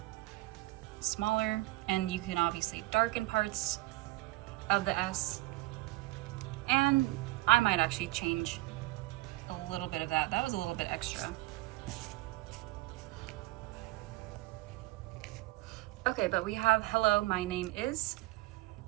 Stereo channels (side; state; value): left; quieter; 19.9 dB